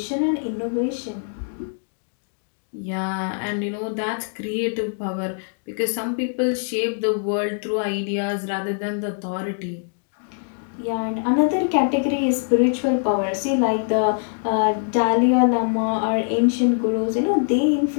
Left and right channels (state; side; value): silent; right; 63 dB below the other